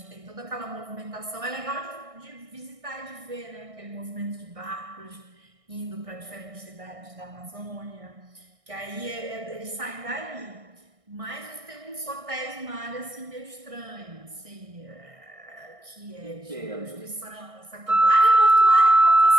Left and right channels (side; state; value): left; late; 1.6 ms